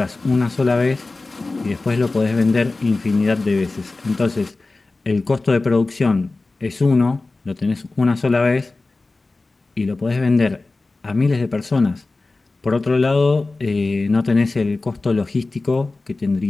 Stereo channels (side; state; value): right; quieter; 3.4 dB